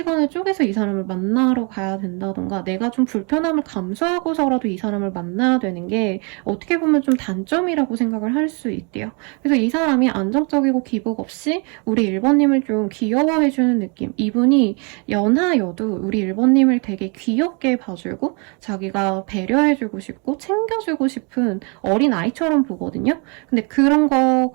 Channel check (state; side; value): quieter; left; 34.1 dB